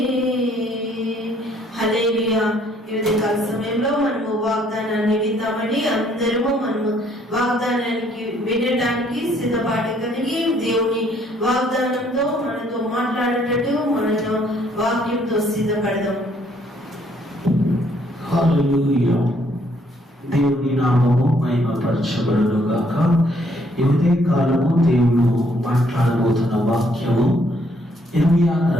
హల్లెలూయా. ఈ ఉదయకాల సమయంలో మనము వాగ్దానాన్ని విందామని అందరము మనము వాగ్దానానికి వినడానికి సిద్ధపాటు కలిగి దేవుని వాగ్దానంతో మనతో మాట్లాడేటట్టు మనతో వాక్యంతో సిద్ధపడదాం. హల్లెలూయా. దేవుని నామము మహిమపరచబడును గాక. ఈ ఉదయకాలము దేవుడు మాట్లాడబోతున్న వాక్యము ఇర్మియా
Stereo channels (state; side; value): normal; both; correlation 0.66